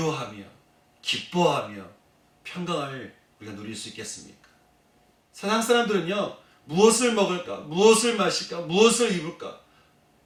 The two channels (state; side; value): identical; both; correlation 1.00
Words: 기뻐하며 평강을 우리가 누릴 수 있겠습니까? 세상 사람들은요, 무엇을 먹을까, 무엇을 마실까, 무엇을 입을까,